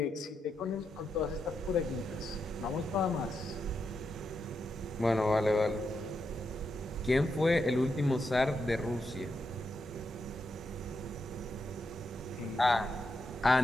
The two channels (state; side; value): normal; both; correlation 0.84